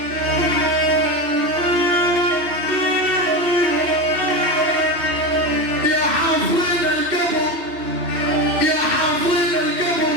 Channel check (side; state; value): left; late; 2.6 ms